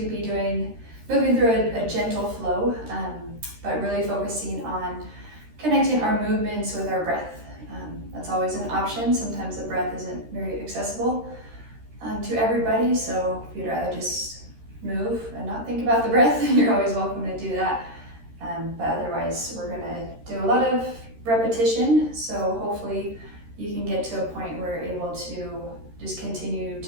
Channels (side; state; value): left; late; 13 ms